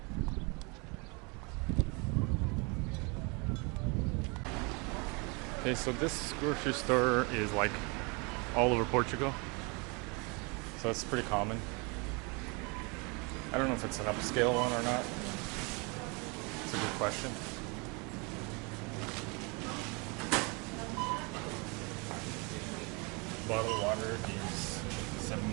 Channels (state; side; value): quieter; left; 30.3 dB